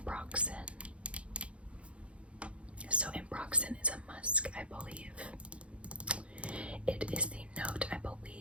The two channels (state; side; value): late; left; 0.061 ms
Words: So ambroxan is a musk, I believe. It is the note, I